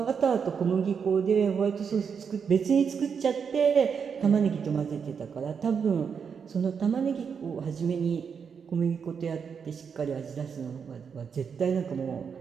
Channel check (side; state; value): left; quieter; 6.5 dB